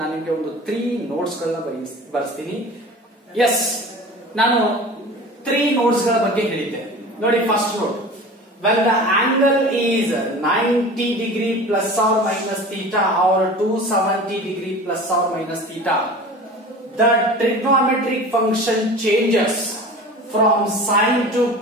ನಿಮ್ಗೆ ಒಂದು 3 ನೋಟ್ಸ್ ಗಳನ್ನ ಬರೆಸ್ತೀನಿ. ಎಸ್, ನಾನು 3 ನೋಟ್ಸ್ ಗಳ ಬಗ್ಗೆ ಹೇಳಿದ್ದೆ ನೋಡಿ. First note, when the angle is 90 degree plus or minus theta or 270 degree plus or minus theta, the trigonometric function changes from sine to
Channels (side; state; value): both; normal; correlation 0.38